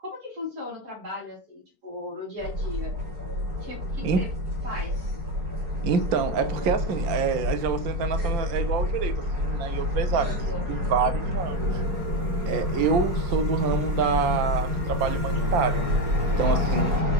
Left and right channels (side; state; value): left; late; 4.4 ms